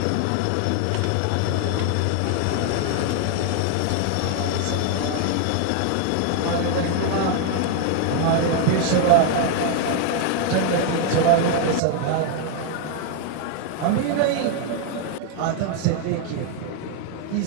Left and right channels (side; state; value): both; different; correlation 0.00